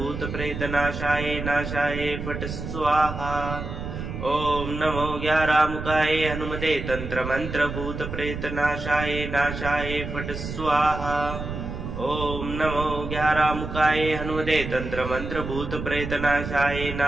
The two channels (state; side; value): noise; right; rumble, 7 dB below the sound